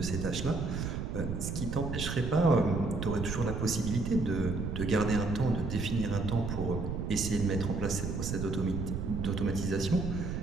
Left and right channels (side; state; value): right; noise; rumble, 3 dB below the sound